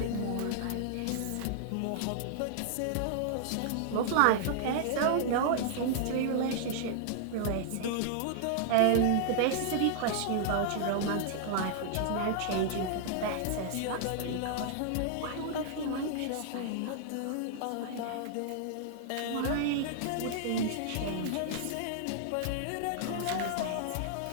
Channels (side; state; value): both; different; correlation -0.01